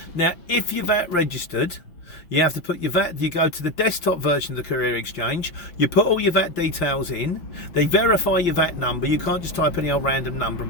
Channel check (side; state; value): right; late; 5.8 ms